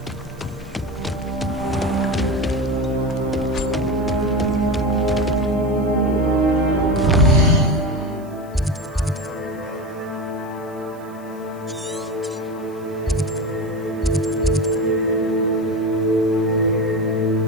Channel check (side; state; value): right; noise; hiss, 28 dB below the sound